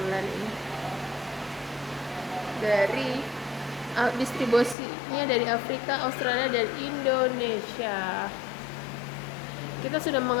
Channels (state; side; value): drops out; right; at 4.8 s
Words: ini. Dari distribusinya dari Afrika, Australia, dan Indonesia. Kita sudah